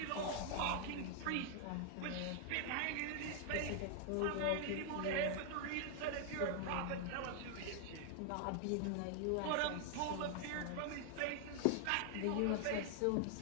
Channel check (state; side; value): different; both; correlation 0.00